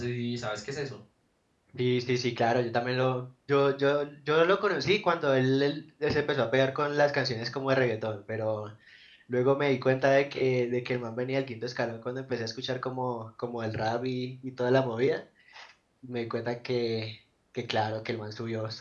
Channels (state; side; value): identical; both; correlation 1.00